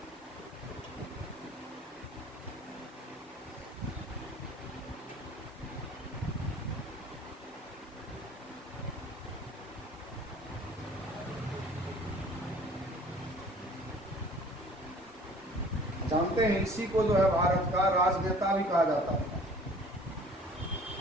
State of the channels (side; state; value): both; normal; correlation 0.50